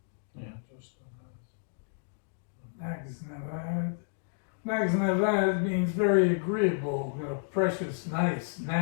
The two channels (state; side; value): silent; right; digital silence